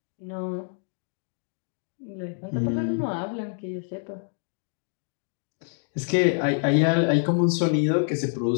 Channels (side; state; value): right; silent; digital silence